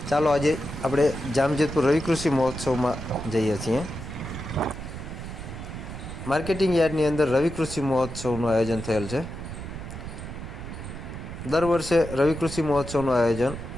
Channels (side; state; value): right; noise; rumble, 9 dB below the sound